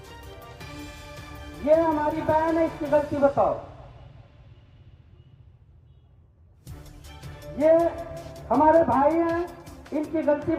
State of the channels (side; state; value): both; identical; correlation 1.00